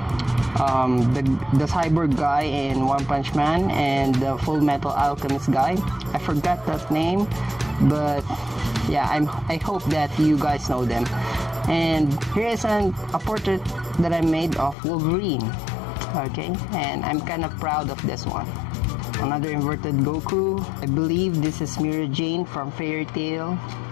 the cyborg guy in One Punch Man and the Full Metal Alchemist guy. I forgot that name, but yeah, I hope that you guys know them. And here is a portrait that I made of Wolverine. Okay, and I'm kind of proud of this one. Another inverted Goku. I believe this is Mira Jane from Fairy Tail.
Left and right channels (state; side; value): drops out; right; at 14.8 s